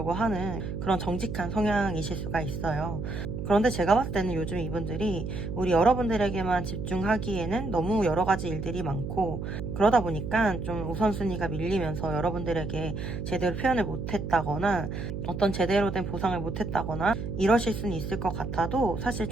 하는 그런 정직한 성향이실 수가 있어요. 그런데 제가 봤을 때는 요즘 이분들이 우리 여러분들에게만 집중하기에는 너무 여러 가지 일들이 많고, 그러다 보니까 좀 우선순위가 밀리면서 여러분들에게 제대로 표현을 못했다거나 어떤 제대로 된 보상을 못했다거나 이러실 수는 있을 것 같아도 사실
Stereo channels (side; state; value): right; noise; hum, 5 dB below the sound